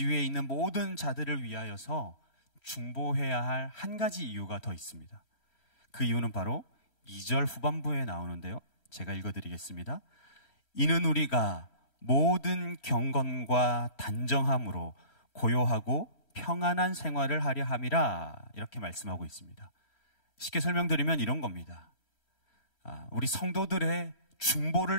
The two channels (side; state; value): right; late; 3.1 ms